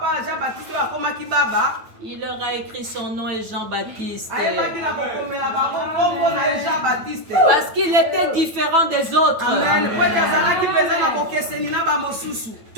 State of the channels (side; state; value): left; late; 9.1 ms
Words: il leur a écrit son nom est Jean-Baptiste. Parce qu'il était différent des autres. Amen.